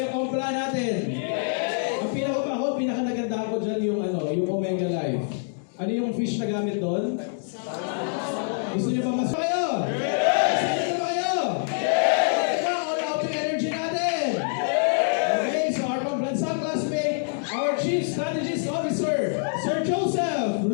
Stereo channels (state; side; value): silent; right; digital silence